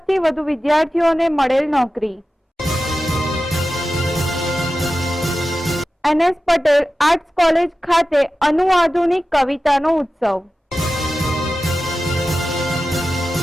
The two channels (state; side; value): normal; both; correlation 0.94